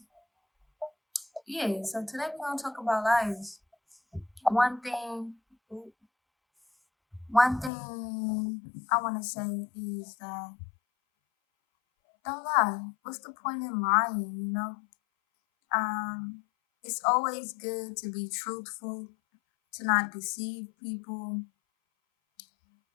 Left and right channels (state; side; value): drops out; right; at 7.7 s